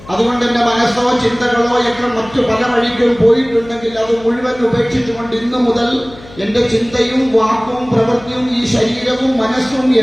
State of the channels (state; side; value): noise; left; hum, 20 dB below the sound